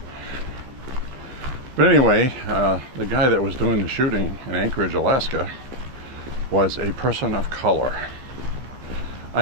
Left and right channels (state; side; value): late; left; 15 ms